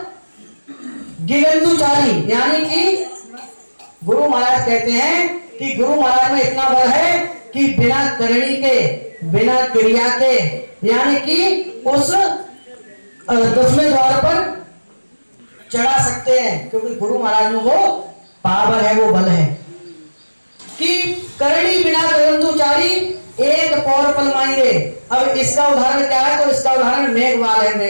गिगंधुचारी, यानी कि गुरु महाराज कहते हैं कि गुरु महाराज में इतना बल है कि बिना करणी के, बिना क्रिया के, यानी कि उस 10वें द्वार पर चढ़ा सकते हैं, क्योंकि गुरु महाराज में वो पावर है, वो बल है कि करणी बिना गगनदुचारी, एक पौर पल मांगे। अब इसका उदाहरण क्या है? तो इसका उदाहरण मेघवाल है।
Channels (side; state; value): both; inverted; correlation -1.00